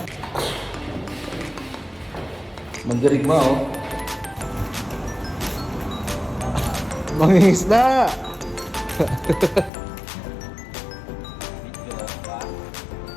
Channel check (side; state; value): right; drops out; at 9.7 s